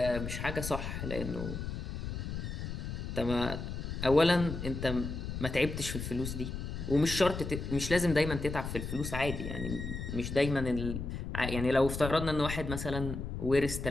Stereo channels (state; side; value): noise; left; rumble, 5 dB below the sound